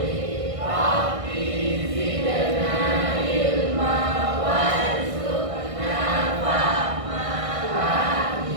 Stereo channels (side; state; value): left; late; 1.6 ms